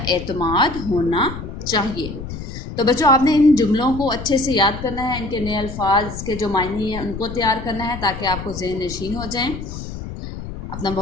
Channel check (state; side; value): noise; left; rumble, 9 dB below the sound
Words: اعتماد ہونا چاہیے۔ تو بچوں، آپ نے ان جملوں کو اچھے سے یاد کرنا ہے، ان کے نئے الفاظ کے جو معنی ہیں ان کو تیار کرنا ہے تاکہ آپ کو ذہن نشین ہو جائیں۔ اپنا